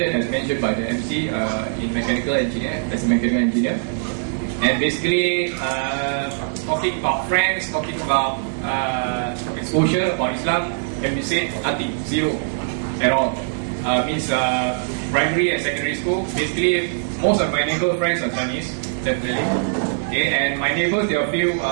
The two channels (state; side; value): silent; left; digital silence